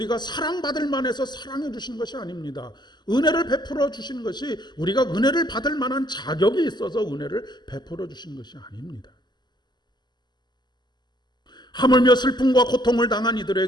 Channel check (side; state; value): right; late; 0.21 ms